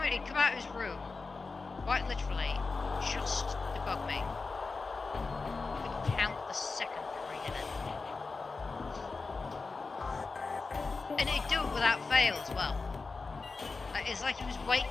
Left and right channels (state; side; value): quieter; right; 4.1 dB